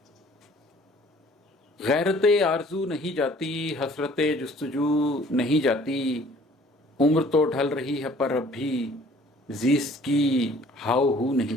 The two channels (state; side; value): normal; both; correlation 0.55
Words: गैरत आरज़ू नहीं जाती, हसरत जुस्तजू नहीं जाती। उम्र तो ढल रही है पर अब भी ज़ीस्त की हाव हू नहीं